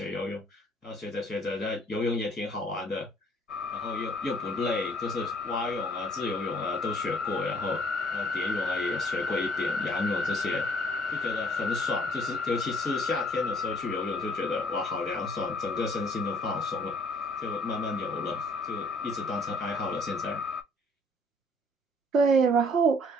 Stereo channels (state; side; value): normal; both; correlation 0.60